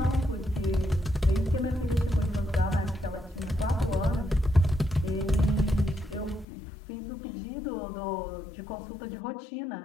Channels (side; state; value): right; drops out; at 6.5 s